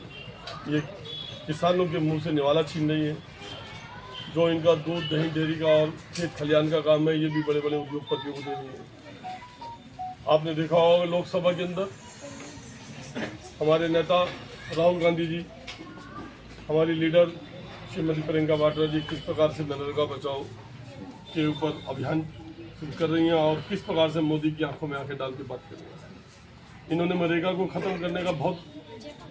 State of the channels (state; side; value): identical; both; correlation 1.00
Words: ये किसानों के मुंह से निवाला छीन रही है। जो इनका दूध दही डेयरी का और खेत खलियान का काम है, ये भी बड़े बड़े उद्योगपतियों को दे रही है। आपने देखा होगा लोकसभा के अंदर हमारे नेता राहुल गांधी जी, हमारी लीडर श्रीमती प्रियंका वाड्रा जी किस प्रकार से मनरेगा बचाओ के ऊपर अभियान शुरू कर रही हैं और किस प्रकार से मोदी की आंखों में आंखें डाल के बात कर रही हैं। इन्होंने मनरेगा को ख़त्म करने का बहुत